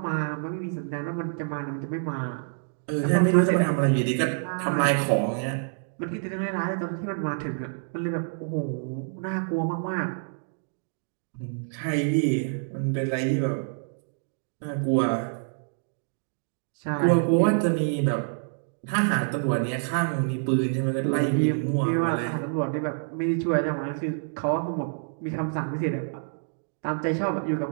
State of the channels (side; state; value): left; silent; digital silence